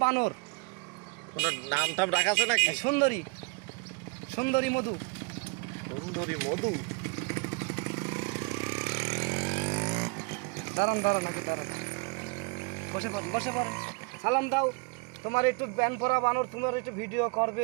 বানর। ওনার নাম টাম রাখা আছে নাকি? সুন্দরী, সুন্দরী মধু। সুন্দরী মধু। দাঁড়ান দাঁড়ান, আগে দাঁড়ান, বসে পড়েন, বসে পড়েন। সালাম দাও। তোমার একটু ব্যান পরা বানর, তোমার একটু ভিডিও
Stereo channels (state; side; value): quieter; left; 32.0 dB